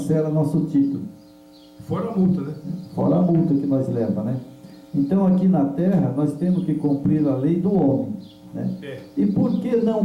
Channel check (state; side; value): identical; both; correlation 1.00